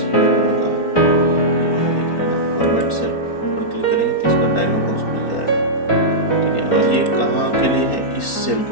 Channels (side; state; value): right; late; 4.4 ms